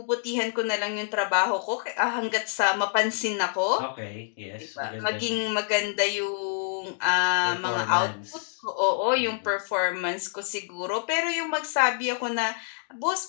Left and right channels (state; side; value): silent; right; 60 dB below the other